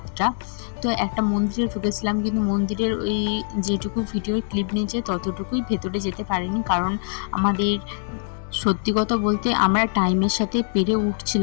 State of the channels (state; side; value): silent; right; 63 dB below the other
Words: তো একটা মন্দিরে ঢুকেছিলাম, কিন্তু মন্দিরের ওই যেটুকু ভিডিওর ক্লিপ নিয়েছে ততটুকুই, ভেতরে যেতে পারিনি। কারণ আমাদের সত্যি কথা বলতে আমরা টাইমের সাথে পেরে